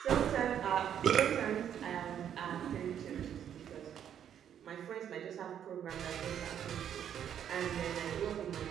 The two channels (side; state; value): left; quieter; 9.4 dB